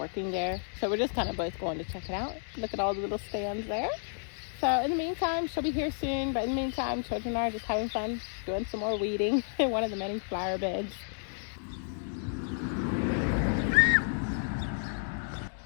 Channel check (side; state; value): right; silent; digital silence